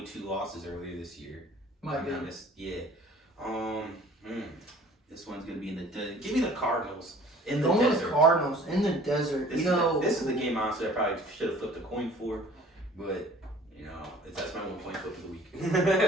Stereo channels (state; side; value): normal; both; correlation 0.50